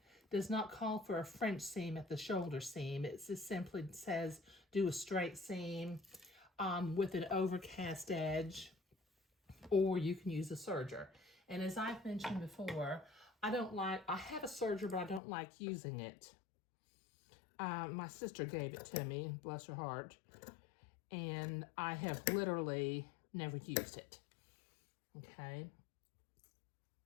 does not call for a French seam at the shoulder seam. It just simply says do a straight seam with an overcast edge, or you can use a serger. And as I've mentioned before, I have a serger, but I don't like using it. My sister gave it to me, bless her heart, and I have literally never used it, okay?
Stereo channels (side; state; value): right; drops out; at 15.2 s